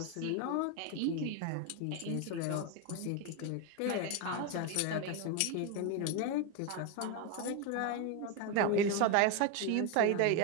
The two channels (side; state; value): both; different; correlation 0.02